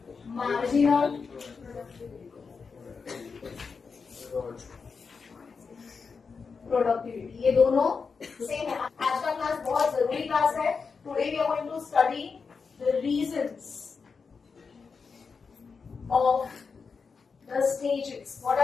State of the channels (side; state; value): right; quieter; 5.2 dB